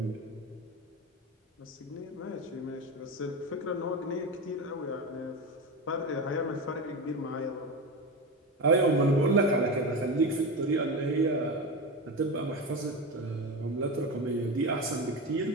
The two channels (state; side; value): normal; both; correlation 0.21